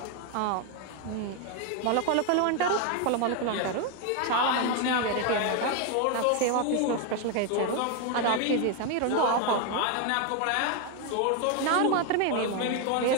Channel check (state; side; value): different; both; correlation 0.01